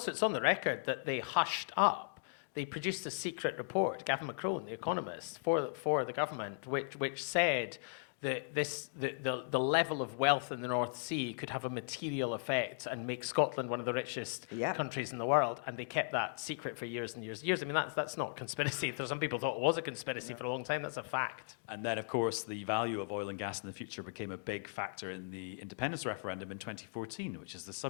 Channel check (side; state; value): right; silent; digital silence